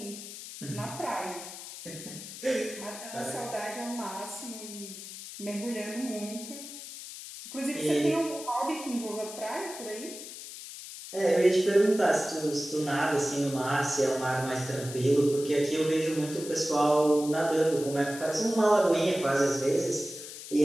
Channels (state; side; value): noise; left; hiss, 12 dB below the sound